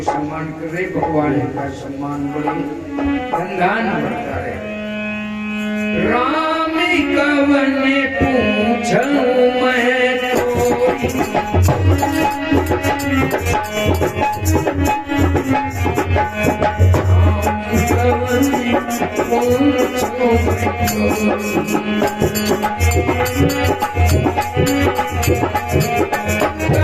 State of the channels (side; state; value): both; identical; correlation 1.00